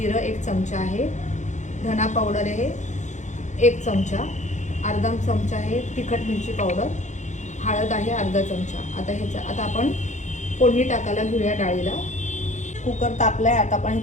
1 चमचा आहे, धना पावडर आहे 1 चमचा, अर्धा चमचा आहे तिखट मिरची पावडर, हळद आहे अर्धा चमचा। आता आपण फोडणी टाकायला घेऊया डाळीला। कुकर तापलाय, आता आपण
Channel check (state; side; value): late; right; 0.35 ms